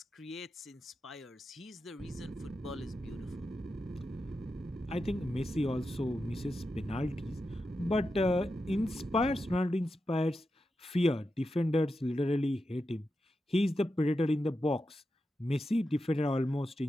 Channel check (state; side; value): normal; both; correlation 0.89